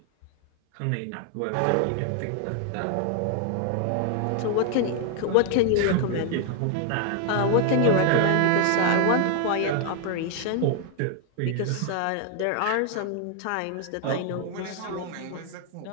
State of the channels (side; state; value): both; different; correlation 0.00